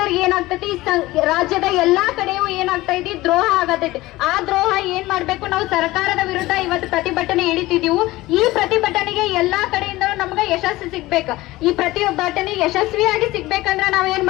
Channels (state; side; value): quieter; right; 18.5 dB